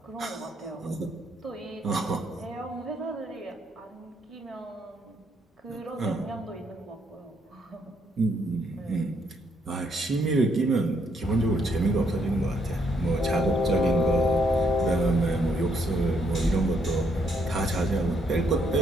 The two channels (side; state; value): both; normal; correlation 0.72